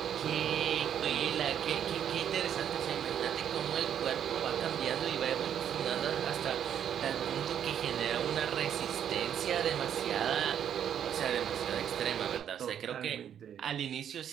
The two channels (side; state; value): left; quieter; 9.3 dB